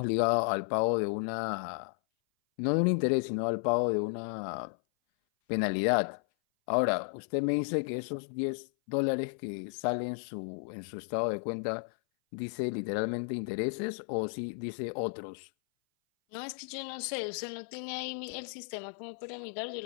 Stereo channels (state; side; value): silent; right; 56 dB below the other